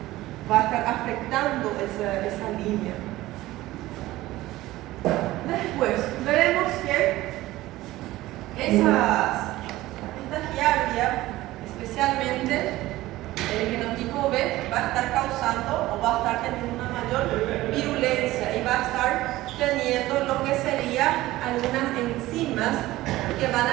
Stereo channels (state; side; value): quieter; left; 17.0 dB